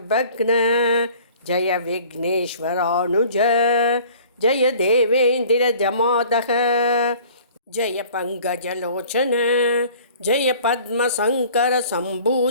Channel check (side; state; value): both; inverted; correlation -0.50